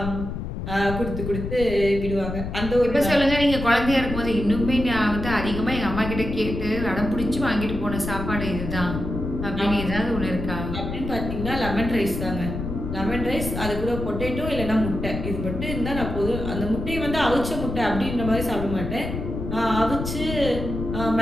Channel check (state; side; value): noise; left; rumble, 5 dB below the sound